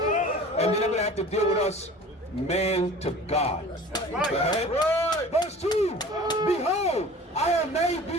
then they're going to have to deal with us man to God. Go ahead. Verse 2, behold, I have made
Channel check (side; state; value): both; normal; correlation 0.42